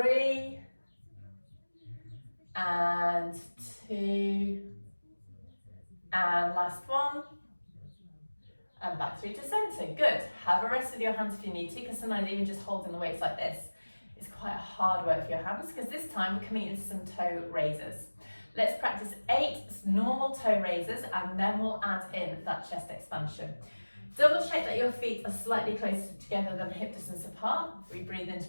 and 2 and last one. And back through to centre. Good. Have a rest with your hands if you need to, because sometimes even just holding the weights like this is quite hard work for your hands, because this time we're coming into some toe raises. Let's practice 8 normal toe raises, and then we'll add in that chest expansion. Double check that your feet are slightly closer together than hip distance apart. We breathe in to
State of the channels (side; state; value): both; inverted; correlation -1.00